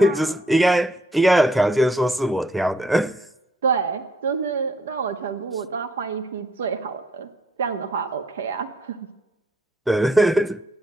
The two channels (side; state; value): both; normal; correlation 0.69